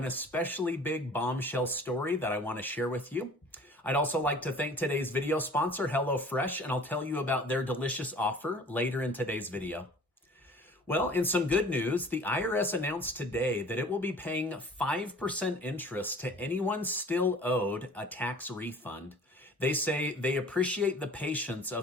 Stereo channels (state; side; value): normal; both; correlation 0.47